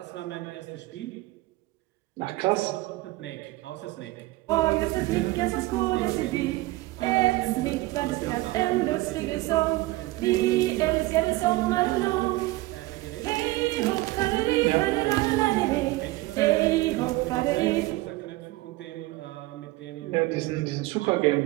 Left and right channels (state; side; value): quieter; left; 19.4 dB